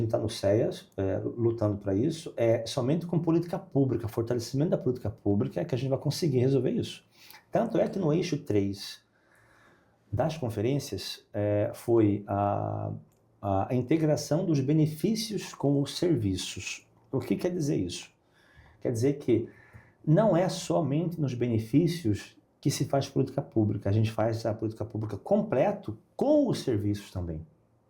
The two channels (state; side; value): identical; both; correlation 1.00